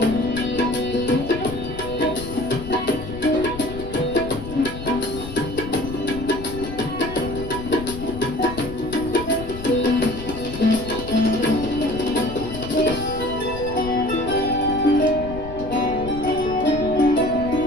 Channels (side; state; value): left; noise; rumble, 10 dB below the sound